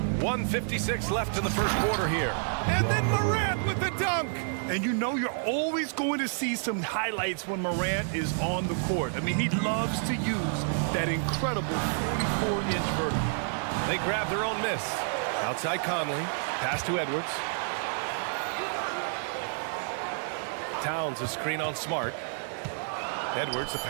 1:56 left in the first quarter here. And then Morant with the dunk. And you know you're always going to see some highlights when Morant is on the court. I mean, he loves to use that incredible 44-inch vertical. They grab their own miss. Outside Conley. Pass to Edwards. Towns a screen on Smart. Edwards, the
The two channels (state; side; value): silent; left; 58 dB below the other